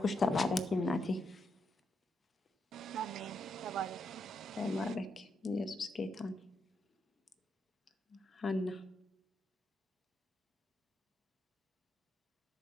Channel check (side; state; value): both; normal; correlation 0.81